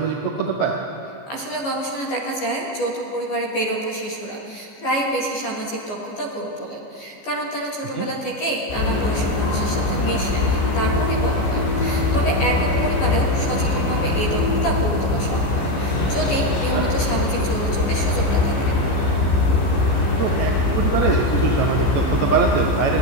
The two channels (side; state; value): right; late; 14 ms